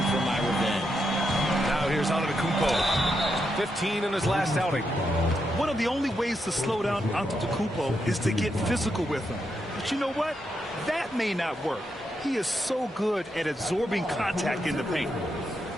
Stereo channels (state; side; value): normal; both; correlation 0.82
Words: for my revenge. Now here's Antetokounmpo. 15 in his last outing. One of the only ways to slow down Antetokounmpo is to get physical with him. But you know what? That may not work. He is so good at absorbing contact in the paint.